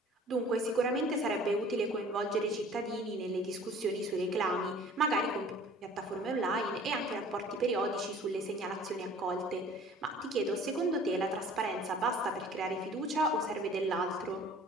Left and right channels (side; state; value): both; normal; correlation 0.49